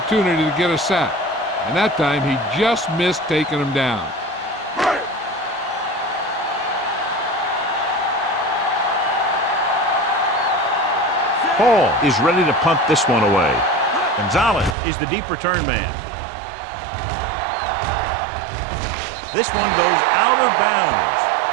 to get a sack, and that time he just missed taking him down. Hall is ready to punt this one away. Gonzalez is the deep return man. This one goes out of bounds.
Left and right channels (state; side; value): drops out; left; at 14.8 s